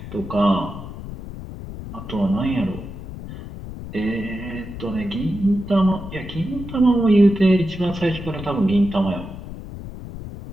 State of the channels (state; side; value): noise; left; rumble, 11 dB below the sound